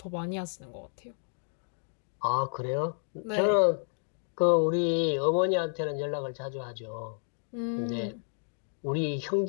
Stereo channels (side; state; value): right; silent; digital silence